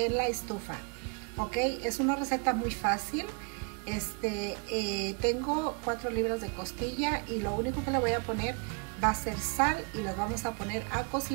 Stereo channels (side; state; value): left; quieter; 34.7 dB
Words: la estufa. Ok, es una receta muy fácil. Tengo 4 libras de costilla y lo único que le voy a poner va a ser sal y las vamos a poner a